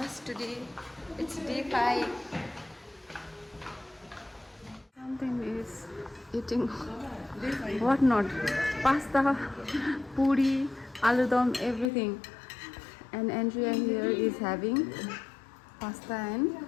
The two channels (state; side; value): drops out; right; at 11.9 s